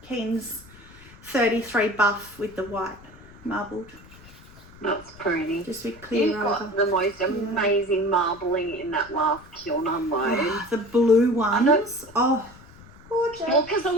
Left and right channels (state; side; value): noise; left; rumble, 21 dB below the sound